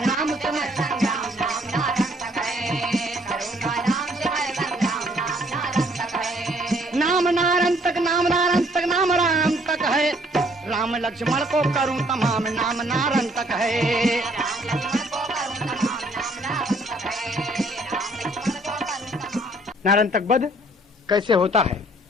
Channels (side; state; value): both; normal; correlation 0.62